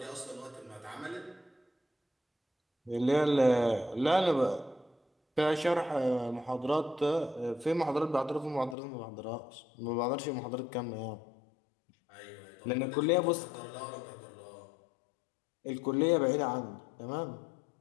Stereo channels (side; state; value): right; drops out; at 8.8 s